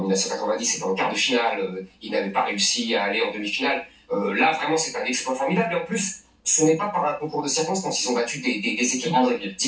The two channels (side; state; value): both; identical; correlation 1.00